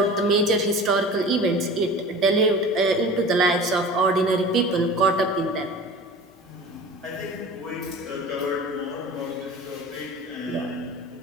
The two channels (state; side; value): normal; both; correlation 0.38